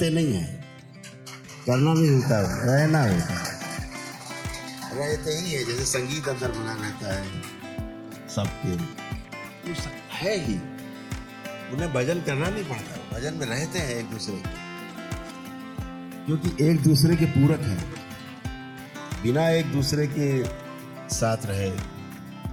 नहीं हैं। करना भी होता है, रहना होता है, रहते ही है। जैसे संगीत अंदर बना रहता है सबके, तो है ही, उन्हें भजन करना नहीं पड़ता, भजन में रहते हैं एक दूसरे के, क्योंकि एक दूसरे के पूरक हैं। बिना एक दूसरे के साथ रहे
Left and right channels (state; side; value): identical; both; correlation 1.00